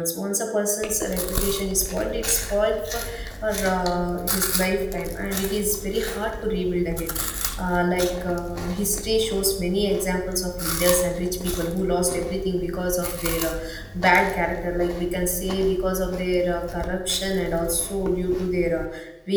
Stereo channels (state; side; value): identical; both; correlation 1.00